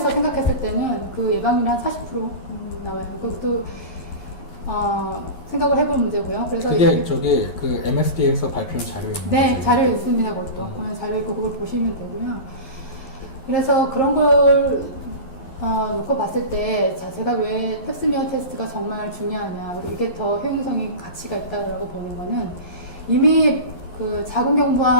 생각했을 때는 그 예방률이 한 40% 나와요. 그것도 생각을 해볼 문제고요. 그래서 그게 그 MSD에서 발표한 자료입니다. 네, 자료 있습니다. 그것도 보면 자료 있고 그걸 보시면 되고요. 그래서 그런 걸 놓고 봤을 때, 제가 왜 펩스미어 테스트가 정말 중요하냐, 그리고 이게 더 효용성이 가치가 있다고 보는 거는 이미 그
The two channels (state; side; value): late; right; 11 ms